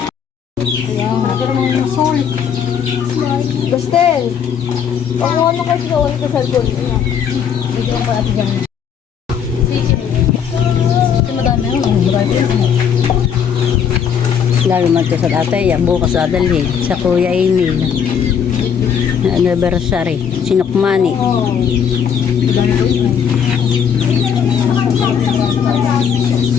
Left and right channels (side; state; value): right; quieter; 7.7 dB